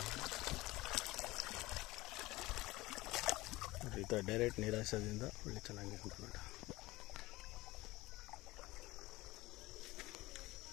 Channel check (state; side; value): quieter; right; 19.9 dB